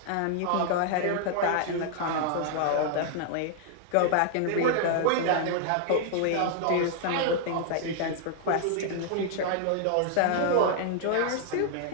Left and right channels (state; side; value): different; both; correlation -0.01